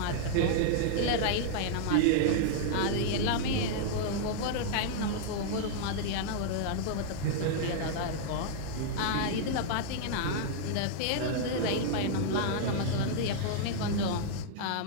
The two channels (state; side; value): different; both; correlation -0.01